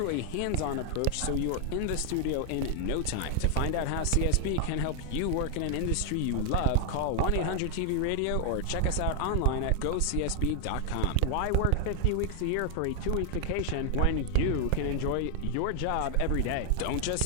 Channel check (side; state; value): both; different; correlation 0.00